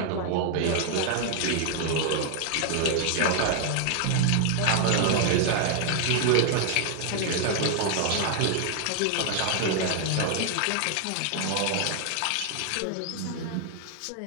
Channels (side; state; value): both; different; correlation 0.00